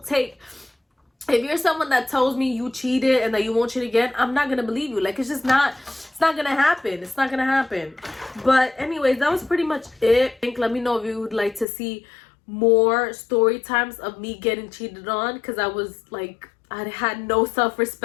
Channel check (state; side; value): drops out; right; at 11.7 s